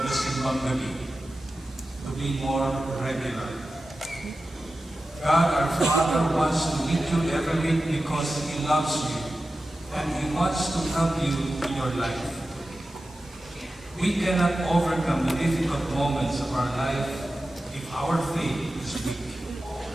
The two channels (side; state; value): both; normal; correlation 0.93